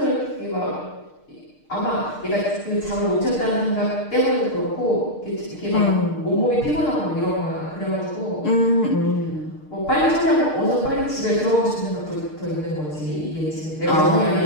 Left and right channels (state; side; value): late; right; 6.6 ms